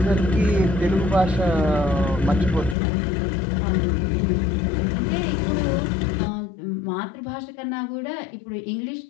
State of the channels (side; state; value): right; drops out; at 2.8 s